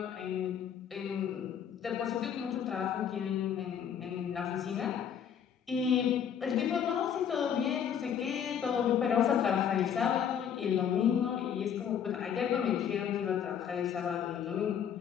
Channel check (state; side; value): quieter; right; 8.4 dB